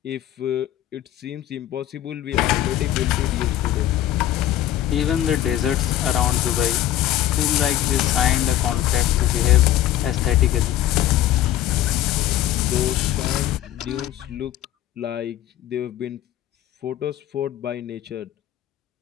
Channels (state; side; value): quieter; right; 12.7 dB